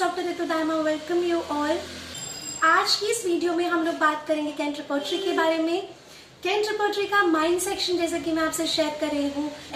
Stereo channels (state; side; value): identical; both; correlation 1.00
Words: Ritu Dharma. Welcome you all. आज की इस video में हम लोग बात करेंगे कैंट रिपोर्टरी के बारे में। कैंट रिपोर्टरी का माइंड सेक्शन जैसे कि मैं आपसे शेयर कर रही हूँ,